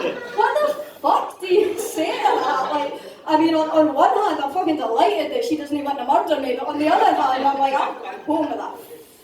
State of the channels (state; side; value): identical; both; correlation 1.00